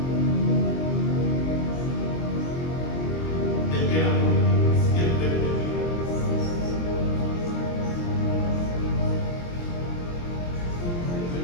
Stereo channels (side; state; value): right; late; 23 ms